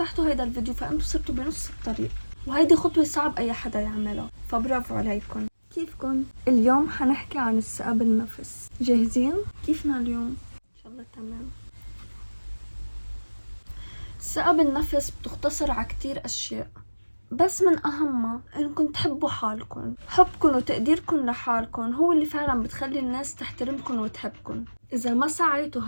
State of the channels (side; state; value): both; inverted; correlation -1.00